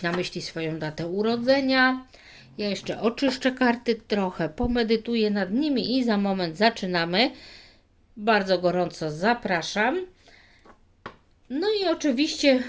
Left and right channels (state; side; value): identical; both; correlation 1.00